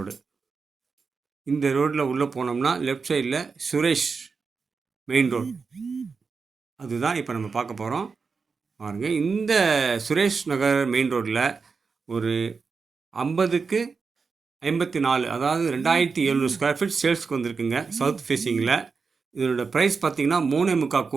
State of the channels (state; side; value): quieter; left; 5.0 dB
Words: இந்த ரோட்டில் உள்ளே போனோம்னா லெஃப்ட் சைடில் சுரேஷ் மெயின் ரோடு. அதுதான் இப்போ நம்ம பார்க்க போகிறோம். பாருங்க, இந்த சுரேஷ் நகர் மெயின் ரோட்டில் ஒரு 50க்கு 54, அதாவது 2700 ஸ்கொயர் ஃபீட் சேல்ஸ்க்கு வந்திருக்குங்க. சவுத் ஃபேஸிங்கில் இதனோட ப்ரைஸ் பார்த்தீங்கன்னா 3.25